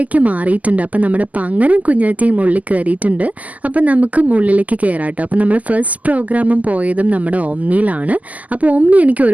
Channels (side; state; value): left; late; 0.076 ms